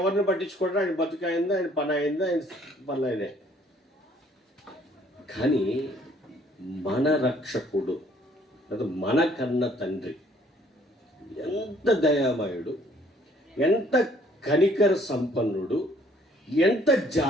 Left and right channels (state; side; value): normal; both; correlation 0.61